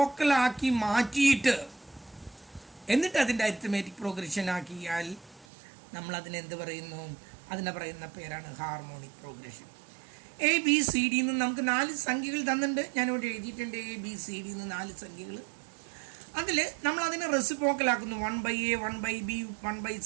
മാറ്റിയിട്ട് എന്നിട്ട് അതിൻ്റെ അരിത്തമാറ്റിക് പ്രോഗ്രഷൻ ആക്കിയാൽ നമ്മൾ അതിനെന്ത് പറയുന്നു? അതിനെ പറയുന്ന പേരാണ് ഹാർമോണിക് പ്രോഗ്രഷൻ. ABCD നിന്ന് നമുക്ക് 4 സംഖ്യകൾ തന്നിട്ടുണ്ട്. ഞാനിവിടെ എഴുതിയിട്ടുണ്ട് ABCD നിന്ന് 4 സംഖ്യകൾ. അതിൽ നമ്മൾ അതിനെ റെസിപ്രോക്കലാക്കുന്നു. 1/A, 1/B,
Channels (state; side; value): drops out; left; at 5.5 s